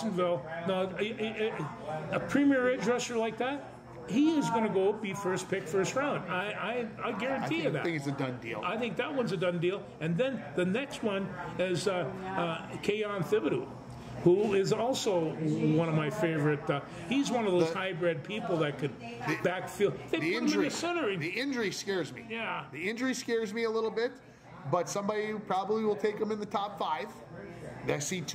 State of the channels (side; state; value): both; identical; correlation 1.00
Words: Now, a premier edge rusher like that, he is going to go be first pick, first round. I guarantee you that. I think it's a done deal. I think that one's a done deal. And then the next one is Keon Thibodeau, who is also one of my favorite. He's one of those hybrid people that could backfield. They put him in the center. The injury scares me. Yeah. The injury scares me a little bit, but somebody probably will take him in the top 5. I see